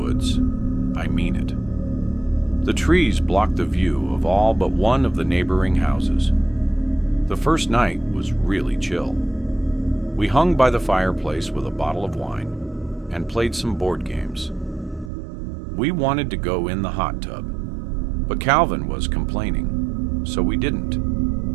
I mean it. The trees blocked the view of all but one of the neighboring houses. The first night was really chill. We hung by the fireplace with a bottle of wine and played some board games. We wanted to go in the hot tub, but Calvin was complaining, so we didn't.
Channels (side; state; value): left; drops out; at 15.1 s